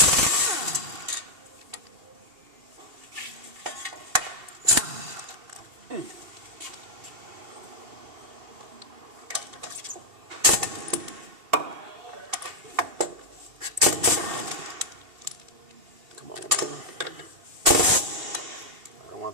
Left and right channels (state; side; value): late; left; 2.7 ms